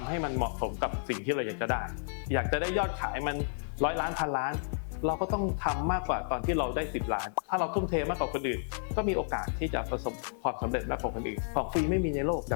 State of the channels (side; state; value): right; silent; digital silence